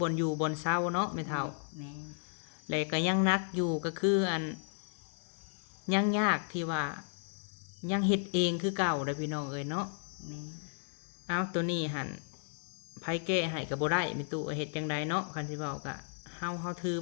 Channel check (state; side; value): silent; right; digital silence